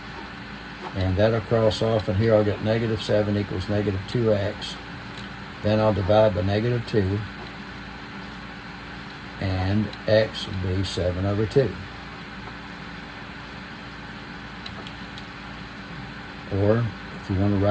and that'll cross off, and here I'll get negative 7 equals negative 2x. Then I'll divide by negative 2, and x will be 7 over 2. Or, if you want to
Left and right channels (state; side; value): identical; both; correlation 1.00